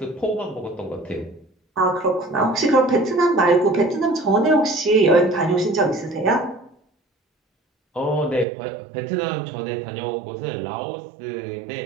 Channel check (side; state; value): left; drops out; at 8.5 s